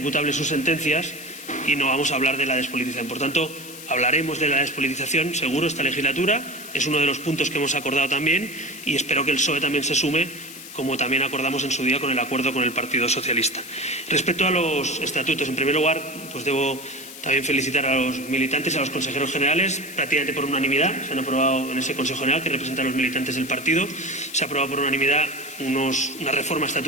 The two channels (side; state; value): left; noise; hiss, 14 dB below the sound